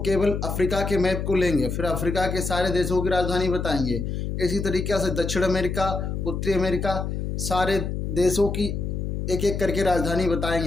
अफ्रीका के मैप को लेंगे, फिर अफ्रीका के सारे देशों की राजधानी बताएंगे। इसी तरीके से दक्षिण अमेरिका, उत्तरी अमेरिका, सारे देशों की एक एक करके राजधानी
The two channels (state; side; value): noise; left; hum, 3 dB below the sound